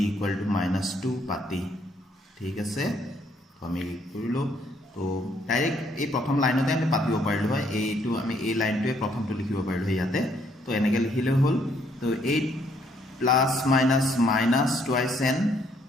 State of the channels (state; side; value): normal; both; correlation 0.68